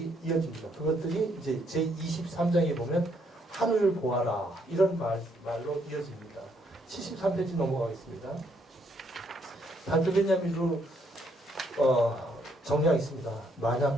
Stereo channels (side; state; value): both; normal; correlation 0.71